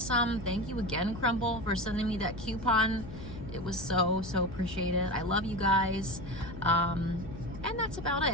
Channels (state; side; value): noise; left; hum, 12 dB below the sound